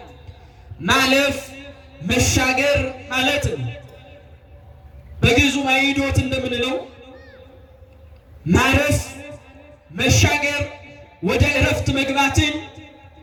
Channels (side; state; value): both; identical; correlation 1.00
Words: ማለፍ መሻገር ማለት ነው። በግዕዙ ማይዶት እንደምንለው ማረፍ መሻገር ወደ ዕረፍት መግባትን